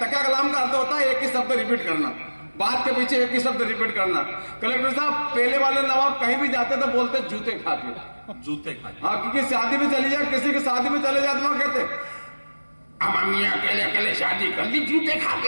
कलाम का अर्थ होता है एक ही शब्द रिपीट करना, बात के पीछे एक ही शब्द रिपीट करना। कलेक्टर साहब पहले वाले नवाब कहीं भी जाते तो बोलते जूते खा के, जूते खा के। हाँ, क्योंकि शादी में चली जाए, किसी की शादी में चले जाते वहां कहते अम्मी अकेले अकेले शादी कर ली जूते खा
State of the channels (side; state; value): both; inverted; correlation -1.00